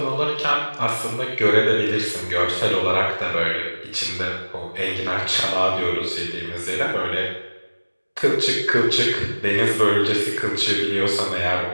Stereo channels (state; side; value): inverted; both; correlation -1.00